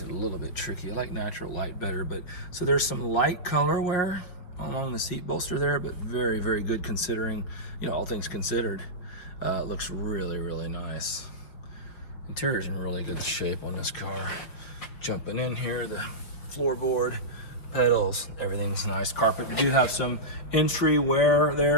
a little bit tricky. I like natural light better, but so there's some light color wear along the seat bolster there, but very, very good considering, you know, all things considered. It looks really, really nice. Interior's in really good shape on this car. Jumping in here, the floorboard, pedals, everything's nice. Carpet, we do have some entry wear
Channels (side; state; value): right; late; 5.5 ms